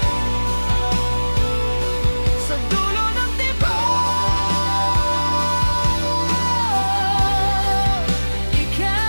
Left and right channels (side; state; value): both; inverted; correlation -1.00